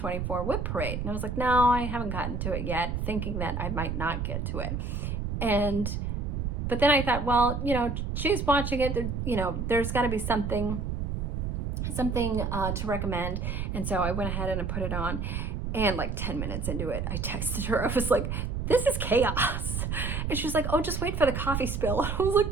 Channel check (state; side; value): noise; right; rumble, 2 dB below the sound